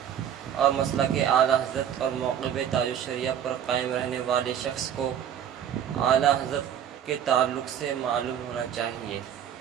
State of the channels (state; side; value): quieter; left; 9.4 dB